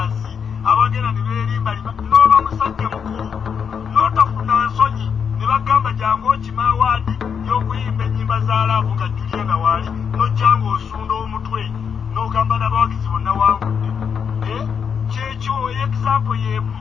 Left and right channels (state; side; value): quieter; right; 6.9 dB